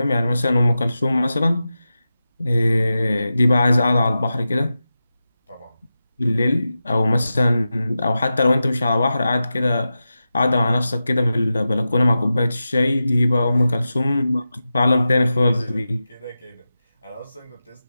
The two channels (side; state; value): both; inverted; correlation -0.92